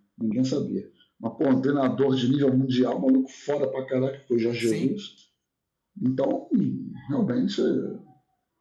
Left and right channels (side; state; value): both; identical; correlation 1.00